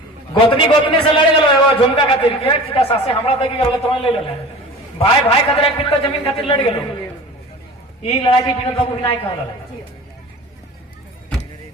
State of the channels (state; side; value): normal; both; correlation 0.38